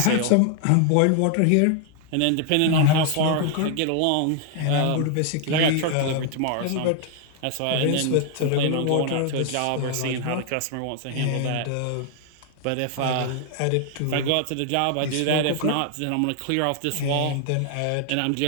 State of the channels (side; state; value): both; different; correlation 0.00